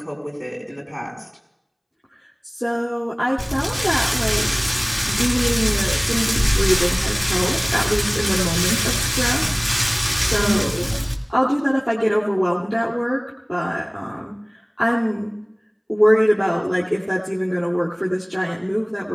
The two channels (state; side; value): identical; both; correlation 1.00